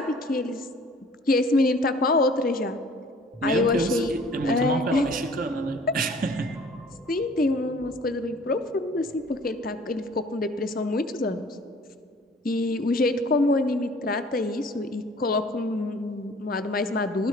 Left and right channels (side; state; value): both; normal; correlation 0.52